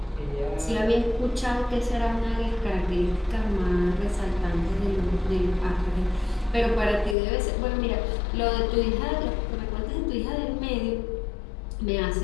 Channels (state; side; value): drops out; right; at 7.2 s